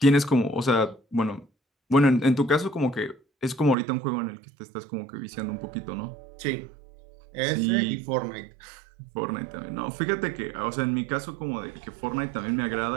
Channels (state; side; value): drops out; left; at 3.8 s